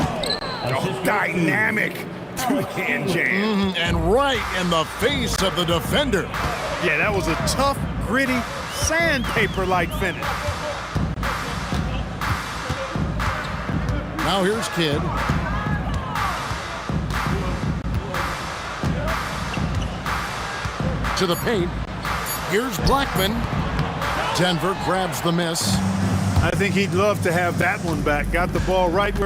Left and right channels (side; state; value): both; identical; correlation 1.00